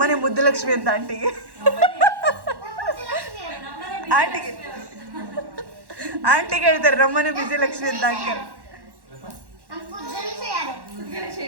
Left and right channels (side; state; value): left; late; 1.1 ms